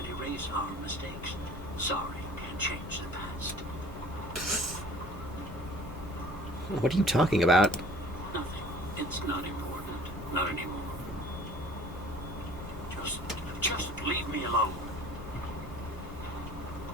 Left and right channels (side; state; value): both; normal; correlation 0.48